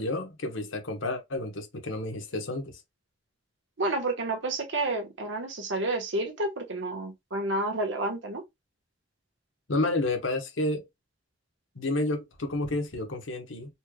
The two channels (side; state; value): both; normal; correlation 0.08